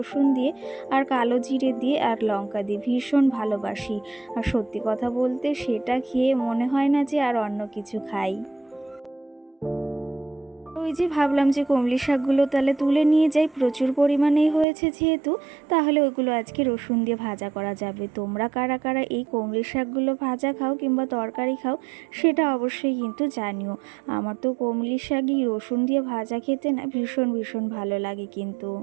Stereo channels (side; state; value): left; drops out; at 14.7 s